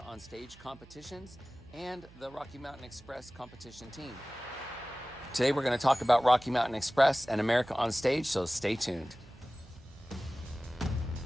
on Stage competitions and the Rocky Mountain Express competition team. Today we're going to talk about Rocky Mountain Express and America on Stage, so stay tuned.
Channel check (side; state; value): right; noise; hum, 22 dB below the sound